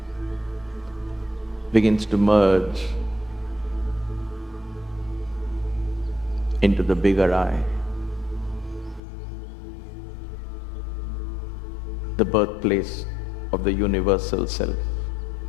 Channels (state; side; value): drops out; right; at 9.0 s